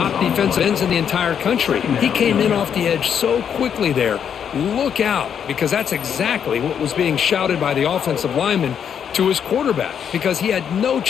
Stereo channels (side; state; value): right; quieter; 8.1 dB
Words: defensive ends in the entire country. He came in off the edge so quickly there. Look out, because that's exactly what was being shouted by the offensive lineman to his quarterback, because he had no